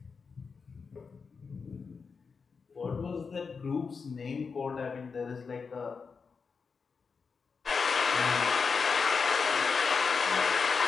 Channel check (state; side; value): quieter; right; 5.3 dB